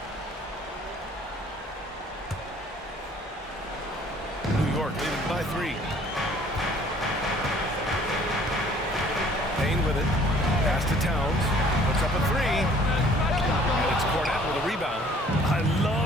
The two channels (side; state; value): both; normal; correlation 0.55